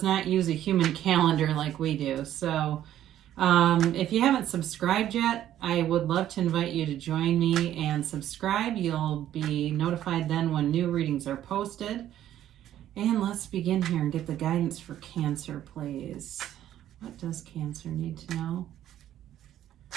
not use a human calendar like we do. So if you haven't subscribed yet, I would love to invite you to join me and subscribe. You'll be notified then when new readings are posted. And let's begin here and get the guidance for Cancer, please. What does Cancer need to know?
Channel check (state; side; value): quieter; left; 11.9 dB